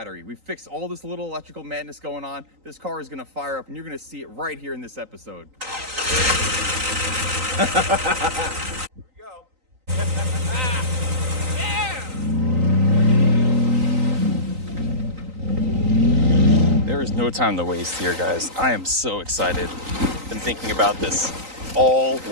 We've fixed all this little electrical madness going on. This car is gonna fire up, and you're gonna see it right here in this episode. Here we go. Yeah! There is no time to waste here, guys. I am so excited. Been thinking about this all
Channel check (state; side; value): late; left; 3.9 ms